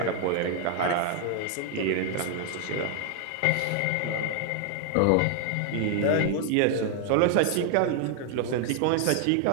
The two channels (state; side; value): different; both; correlation 0.00